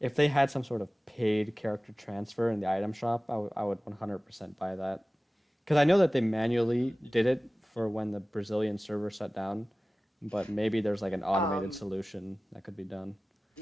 they had some sort of paid character transfer in the item shop, I would 100% buy that. Because I know that they manually did it for when the Brazilian server shut down, but maybe there's like an automated Um, solution that could be done.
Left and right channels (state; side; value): normal; both; correlation 0.97